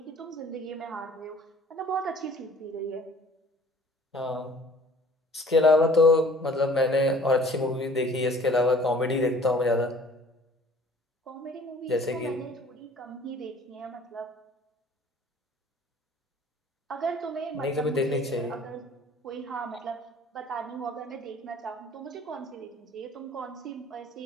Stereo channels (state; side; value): normal; both; correlation 0.51